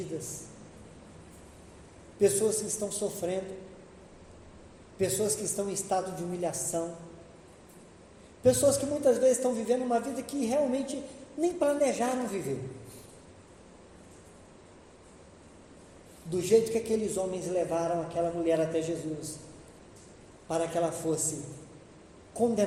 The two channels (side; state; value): both; identical; correlation 1.00